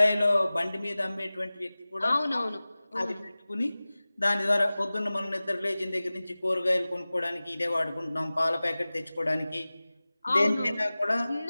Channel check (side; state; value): both; inverted; correlation -0.98